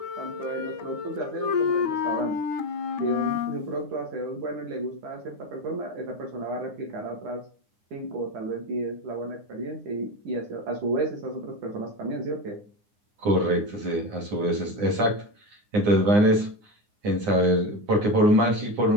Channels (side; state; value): left; late; 9.7 ms